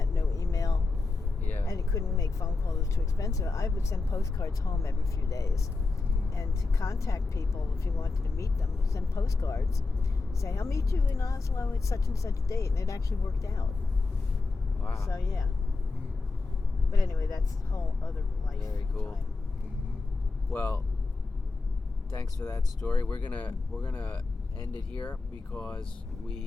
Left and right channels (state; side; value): quieter; right; 3.8 dB